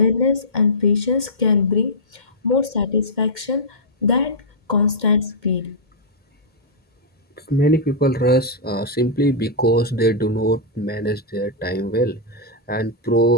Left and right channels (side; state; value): left; late; 1.8 ms